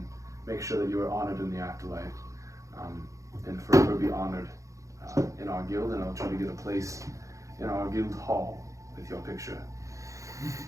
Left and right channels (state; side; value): late; left; 0.15 ms